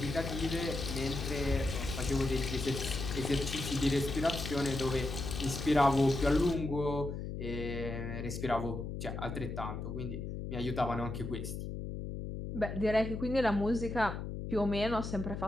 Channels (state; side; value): noise; left; hum, 6 dB below the sound